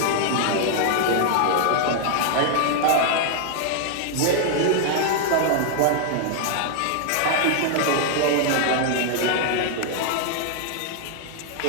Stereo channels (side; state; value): both; different; correlation 0.00